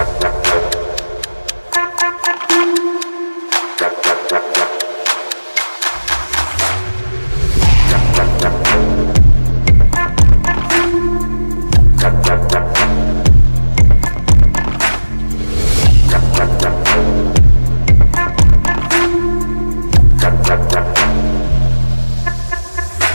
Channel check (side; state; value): both; inverted; correlation -1.00